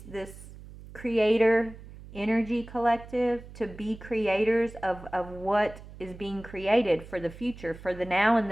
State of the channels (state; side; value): noise; right; hum, 17 dB below the sound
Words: creator energy collective to be creators of what is being created for the future, for the now and